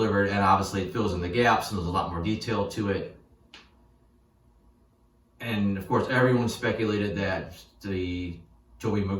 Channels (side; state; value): both; identical; correlation 1.00